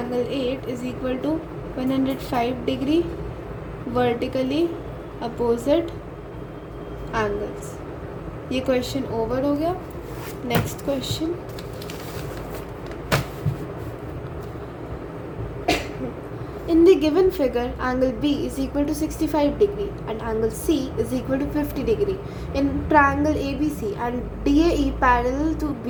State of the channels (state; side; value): identical; both; correlation 1.00